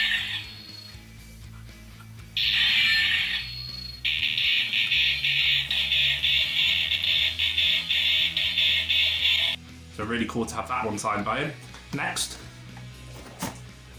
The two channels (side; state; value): both; identical; correlation 1.00